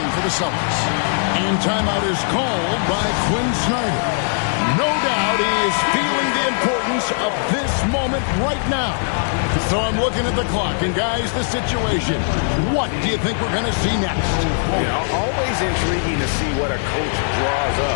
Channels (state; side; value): silent; right; digital silence